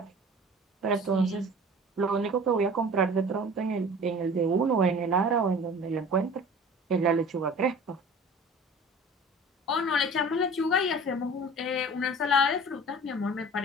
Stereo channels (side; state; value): both; normal; correlation 0.43